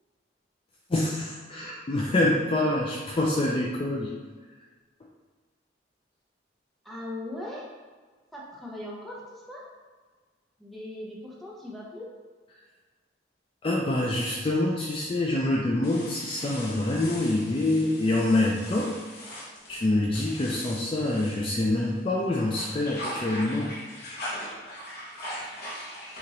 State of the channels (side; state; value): both; normal; correlation 0.66